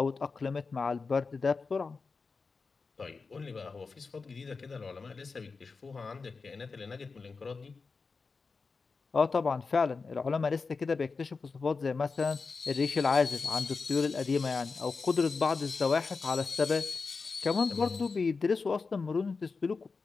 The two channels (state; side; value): quieter; right; 4.5 dB